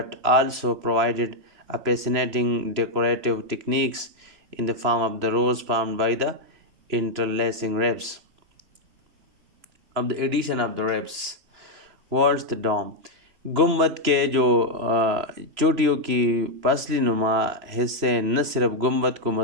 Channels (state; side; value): late; left; 3.0 ms